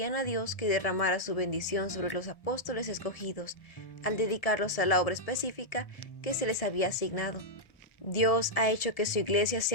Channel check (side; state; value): right; late; 1.7 ms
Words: a Dios que derramara su bendición sobre los apóstoles escogidos, al dedicarlos a la obra específica que se les había asignado. Dios ha hecho que su iglesia